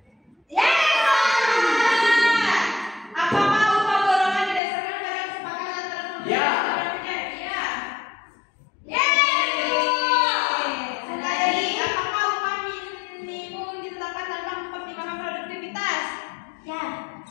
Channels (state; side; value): drops out; right; at 4.6 s